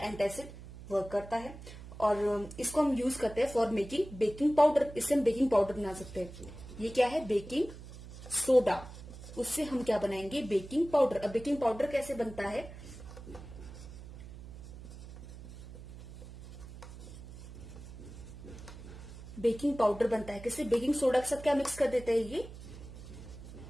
वर्क करता है। और इसको हम यूज करते हैं फॉर मेकिंग बेकिंग पाउडर। इससे हम बेकिंग पाउडर बना सकते हैं। ये क्या है, बेकिंग सोडा, उससे हम क्या बनाएंगे, बेकिंग पाउडर। अब बेकिंग पाउडर कैसे बनता है, बेकिंग पाउडर बनता है किससे, बेकिंग सोडा के साथ क्या मिक्स कर देते हैं, ये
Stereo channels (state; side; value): noise; right; hum, 14 dB below the sound